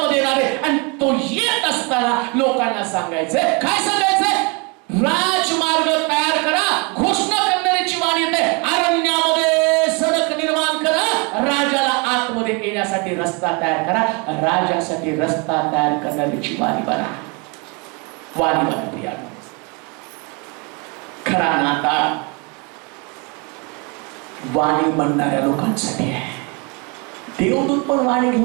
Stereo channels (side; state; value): left; quieter; 31.5 dB